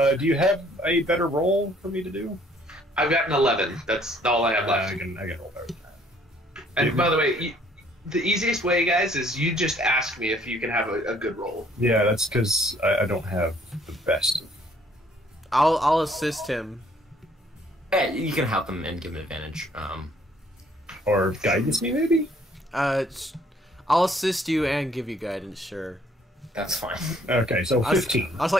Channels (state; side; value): normal; both; correlation 0.62